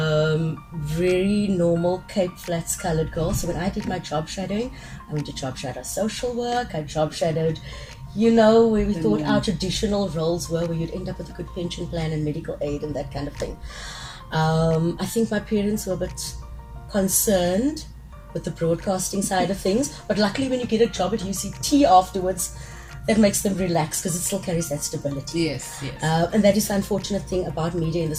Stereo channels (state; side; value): identical; both; correlation 1.00